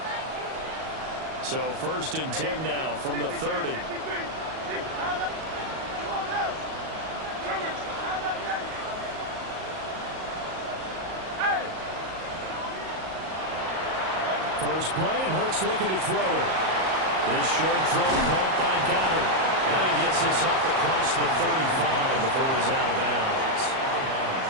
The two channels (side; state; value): left; late; 38 ms